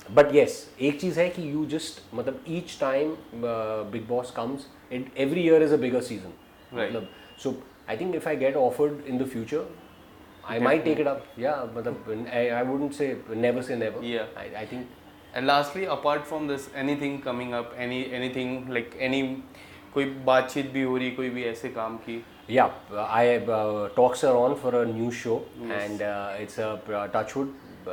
but yes, एक चीज़ है कि यू जस्ट मतलब each time Bigg Boss comes, every year is a bigger season. मतलब so I think if I get offered in the future, I might take it up. Yeah, but I wouldn't say never say never. Yeah. I think. And lastly, apart from this, anything coming up, anything like any कोई बातचीत भी हो रही, कोई भी ऐसे काम की? Yeah, talks are on for a new show, and it's a Touchwood.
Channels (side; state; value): both; identical; correlation 1.00